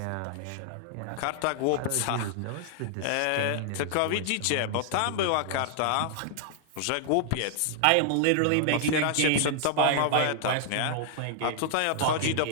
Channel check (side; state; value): both; different; correlation 0.00